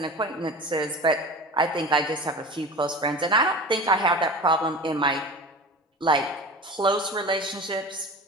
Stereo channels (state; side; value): normal; both; correlation 0.34